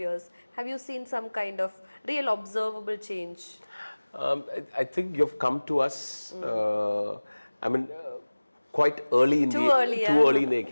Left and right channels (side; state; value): both; inverted; correlation -1.00